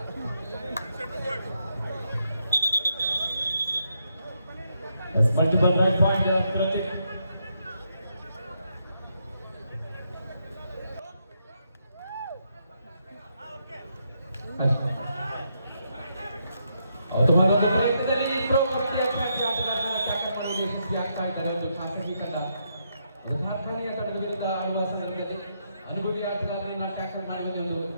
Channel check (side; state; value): both; inverted; correlation -0.79